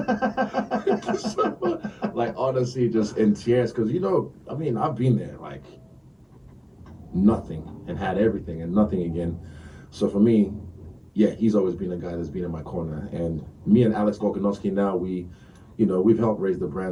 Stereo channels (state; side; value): identical; both; correlation 1.00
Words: you so much." Like honestly, just in tears, because I've been there, like nothing, and had everything, and nothing again. So for me, yeah, he's always been a guy that's been in my corner. And me and Alex Volkanovski now, we've helped raise the